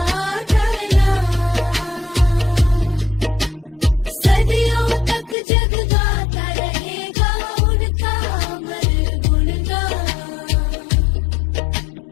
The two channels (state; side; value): drops out; right; at 5.4 s